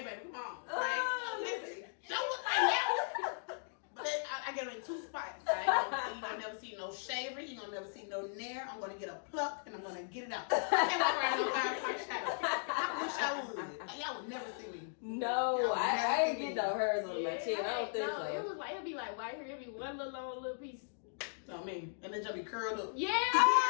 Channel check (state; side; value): silent; right; digital silence